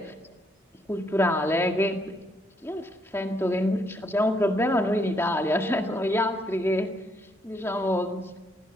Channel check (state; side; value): normal; both; correlation 0.73